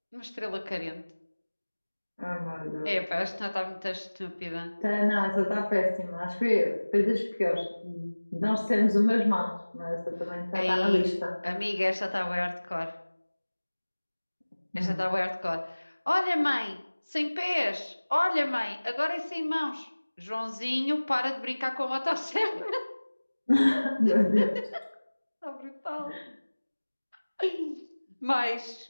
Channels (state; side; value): inverted; both; correlation -1.00